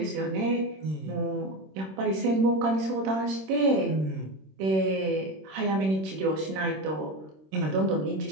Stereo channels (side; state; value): left; late; 26 ms